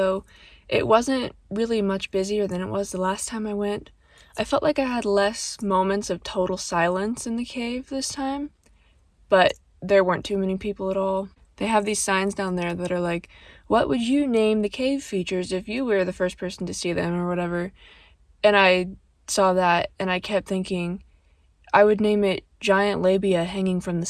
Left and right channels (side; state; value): both; identical; correlation 1.00